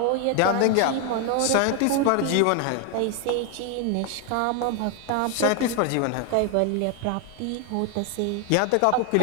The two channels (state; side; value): different; both; correlation 0.01